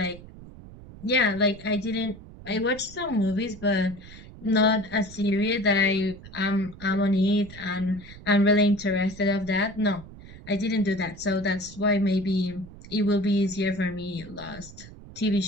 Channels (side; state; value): right; noise; rumble, 17 dB below the sound